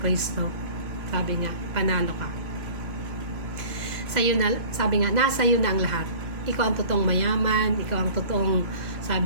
sabi nga, panalo ka. Sabi nga, nasa iyo na ang lahat. Ikaw ang totoong mayaman, ikaw ang totoong,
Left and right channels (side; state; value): left; late; 3.0 ms